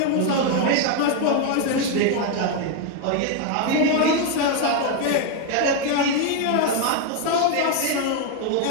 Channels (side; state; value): both; different; correlation 0.01